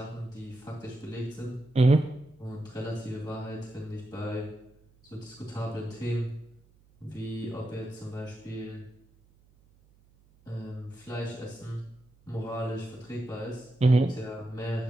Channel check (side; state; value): right; noise; hum, 30 dB below the sound